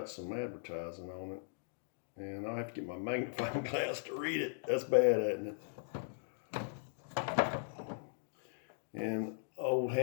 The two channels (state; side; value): silent; right; digital silence